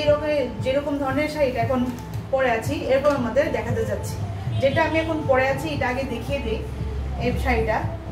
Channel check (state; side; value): identical; both; correlation 1.00